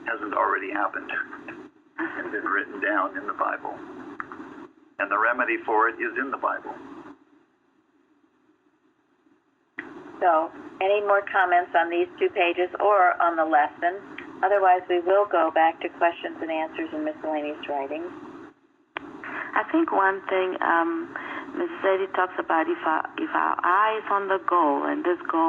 hasn't already happened and been written down in the Bible. And the remedy for it is in the Bible. So, any more comments on these 2 pages or on the lesson? Otherwise, we will go back to questions and answers in miscellaneous writings. I think one thing Mrs. Eddy talks about, if our eye is on the goal, and this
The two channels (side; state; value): both; identical; correlation 1.00